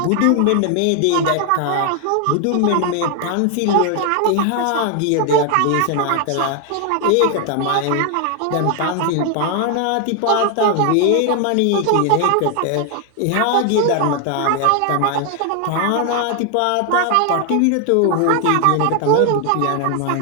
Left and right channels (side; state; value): both; different; correlation 0.00